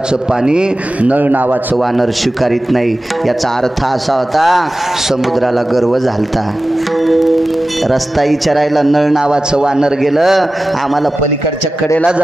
पाणी नळ नावाचं वानर स्वीकारित नाही. याचा अर्थ असा होता, समुद्राला गर्व झालता. रस्ता विचारायला नळ नावाचं वानर गेलं, आम्हाला पलीकडच्या कडेला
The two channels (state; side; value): normal; both; correlation 0.95